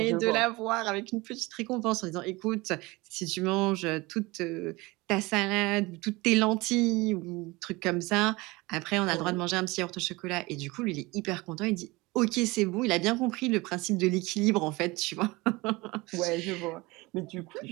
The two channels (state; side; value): quieter; left; 22.7 dB